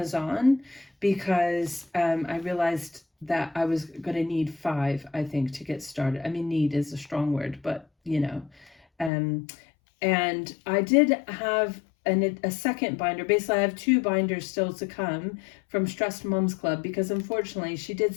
because I realized that I was going to need 5, I think, to get started. I mean, need is a strong word, but and I did have a second binder. Basically, I have 2 binders still to come from Stressed Mums Club because unfortunately she did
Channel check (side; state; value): right; drops out; at 9.1 s